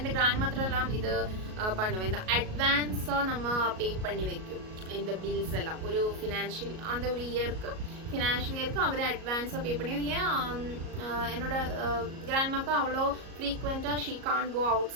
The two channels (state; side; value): late; left; 37 ms